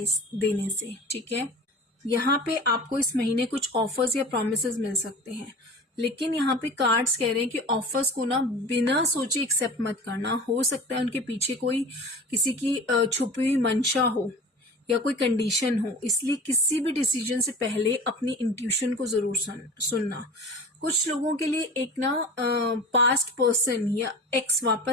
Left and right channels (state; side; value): normal; both; correlation 0.37